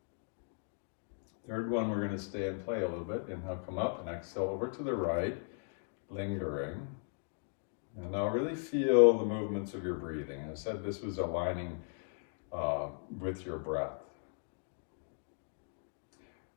Third one, we're going to stay and play a little bit. Inhale, come up, and exhale over to the right, lingering. And now really feel the movements of your breathing. I said this was aligning with your breath.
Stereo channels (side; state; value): right; silent; 53 dB below the other